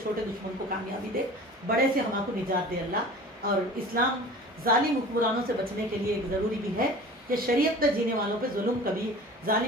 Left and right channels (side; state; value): both; normal; correlation 0.40